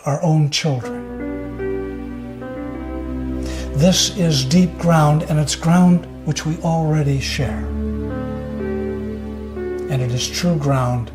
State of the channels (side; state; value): both; identical; correlation 1.00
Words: our own children. This is deep ground, and it's ground which we already share. And it is true ground